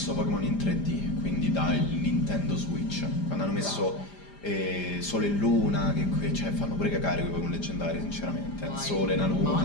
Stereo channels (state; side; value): late; right; 5.0 ms